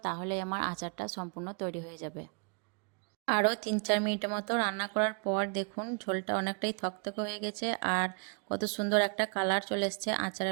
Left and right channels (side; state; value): left; quieter; 39.8 dB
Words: তাহলে আমার আচারটা সম্পূর্ণ তৈরি হয়ে যাবে। আরও 3-4 মিনিটের মতো রান্না করার পর দেখুন ঝোলটা অনেকটাই থকথকে হয়ে গেছে আর কত সুন্দর একটা কালার চলে এসছে